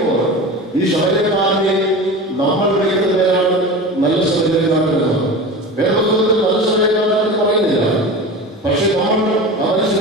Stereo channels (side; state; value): both; normal; correlation 0.30